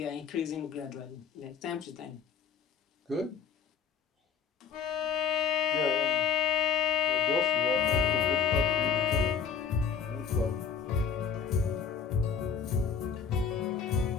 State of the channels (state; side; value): quieter; right; 6.7 dB